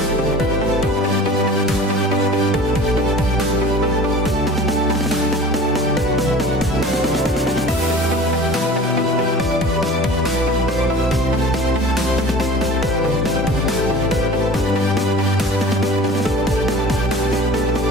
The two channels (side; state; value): both; normal; correlation 0.41